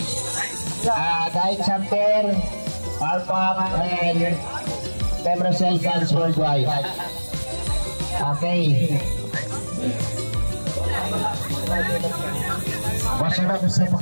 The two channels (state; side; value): inverted; both; correlation -1.00